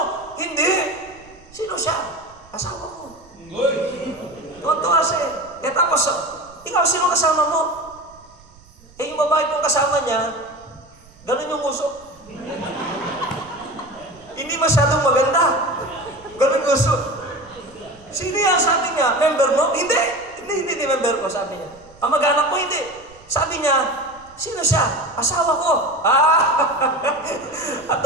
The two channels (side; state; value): right; noise; rumble, 25 dB below the sound